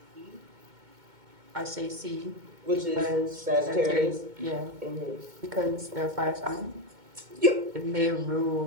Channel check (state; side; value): late; left; 2.2 ms